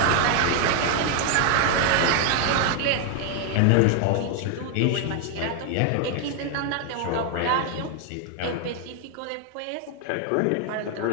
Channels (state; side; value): different; both; correlation 0.00